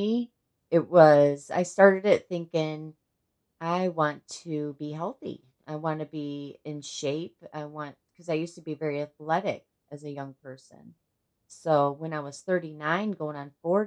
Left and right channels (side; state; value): both; identical; correlation 1.00